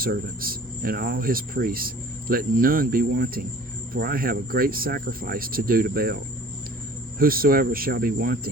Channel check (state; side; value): normal; both; correlation 0.49